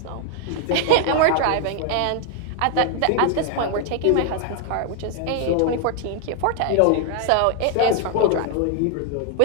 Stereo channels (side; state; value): both; different; correlation 0.00